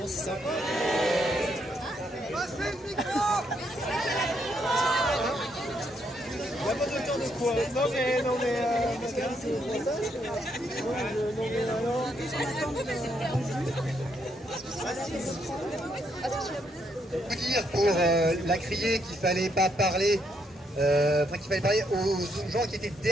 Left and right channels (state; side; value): normal; both; correlation 0.75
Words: c'est sympa. Passez le micro. Il n'y a pas de temps de quoi. Non mais madame, c'est pour ça. Non mais alors. Vous dire pour la crier qu'il fallait pas parler, qu'il fallait parler aux gens qui étaient